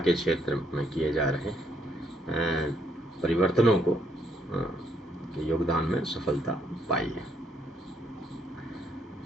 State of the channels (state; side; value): normal; both; correlation 0.72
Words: क्षेत्र में किए जा रहे परिवर्तनों को के योगदान में सफलता पाई है।